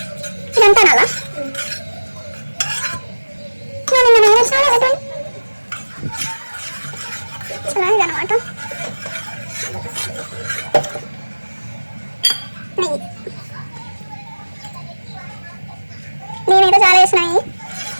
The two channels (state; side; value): inverted; both; correlation -1.00